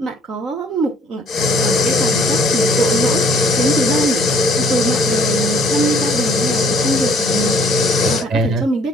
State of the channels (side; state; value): both; normal; correlation 0.60